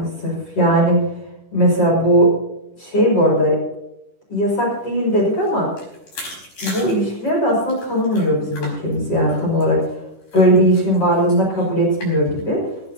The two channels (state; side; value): late; right; 10 ms